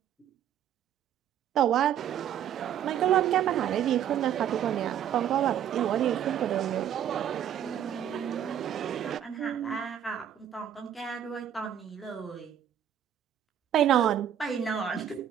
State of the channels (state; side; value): quieter; left; 9.9 dB